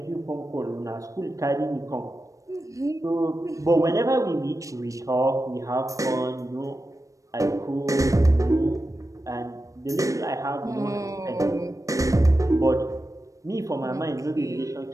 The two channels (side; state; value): left; late; 0.16 ms